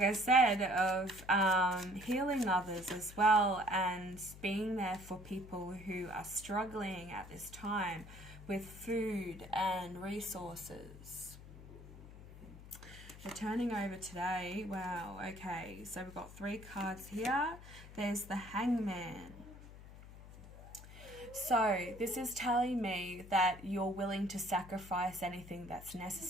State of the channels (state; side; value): noise; left; hum, 16 dB below the sound